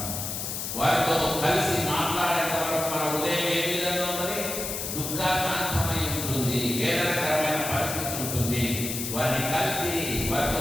వారితో కలిసి మాట్లాడేంత వరకు మన హృదయం ఏ విధంగా ఉన్నది? దుఃఖాకాంతమై ఉంటుంది, వేదనకరమైన పరిస్థితి ఉంటుంది. వారిని కలిసి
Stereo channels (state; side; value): noise; left; hiss, 4 dB below the sound